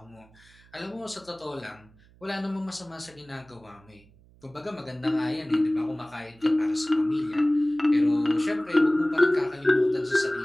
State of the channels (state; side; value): noise; right; hum, 28 dB below the sound